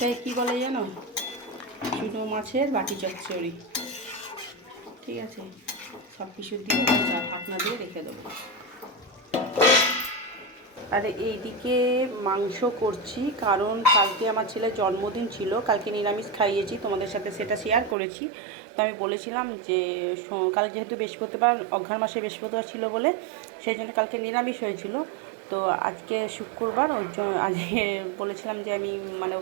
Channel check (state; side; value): drops out; left; at 17.9 s